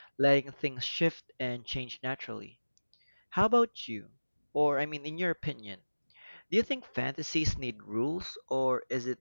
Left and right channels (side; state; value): both; inverted; correlation -1.00